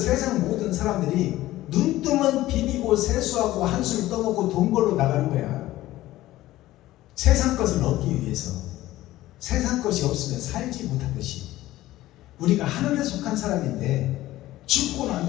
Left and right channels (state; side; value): quieter; right; 15.9 dB